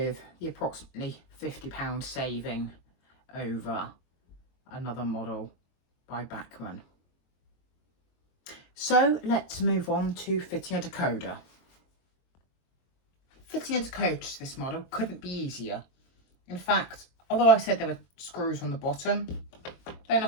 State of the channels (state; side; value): late; right; 22 ms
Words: the approximately £50 saving over another model by Bachmann. So let's move on to fitting a decoder. Fitting a decoder to this model couldn't be easier. In fact, although I said there were screws on the bottom, they're